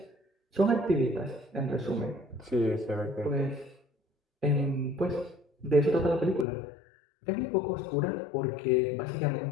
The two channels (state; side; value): drops out; right; at 6.5 s